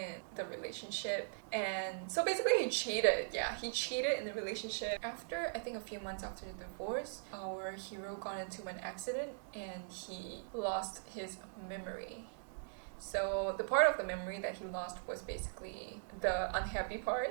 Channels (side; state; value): left; silent; digital silence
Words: the relationship, and so basically he cheated. Yeah, he cheated in the relationship. After I think a few months after the divorce, our hero got into an accident and he lost his memory. So the part of the memory that he lost was basically the unhappy